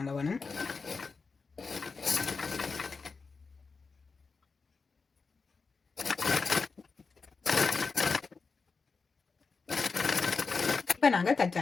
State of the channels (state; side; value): quieter; right; 4.6 dB